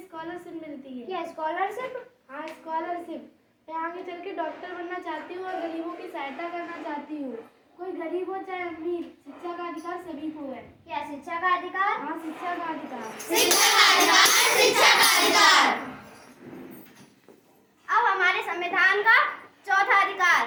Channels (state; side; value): identical; both; correlation 1.00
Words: मिलती है। क्या स्कॉलरशिप? हाँ, स्कॉलरशिप। मैं आगे चल के डॉक्टर बनना चाहती हूँ और गरीबों की सहायता करना चाहती हूँ। कोई गरीब हो चाहे अमीर, शिक्षा का अधिकार सभी को है। क्या शिक्षा का अधिकार? हाँ, शिक्षा का अधिकार। अब हमारे संविधान का चौथा अधिकार,